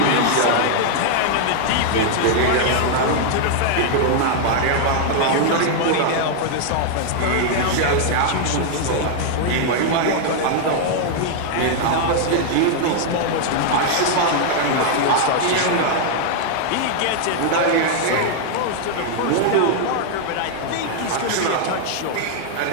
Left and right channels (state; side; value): different; both; correlation 0.00